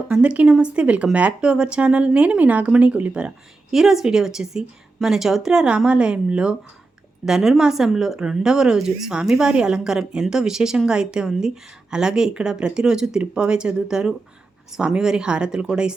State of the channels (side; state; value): left; quieter; 3.4 dB